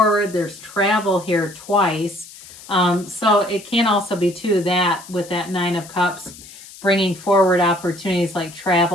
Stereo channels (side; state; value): left; noise; hiss, 18 dB below the sound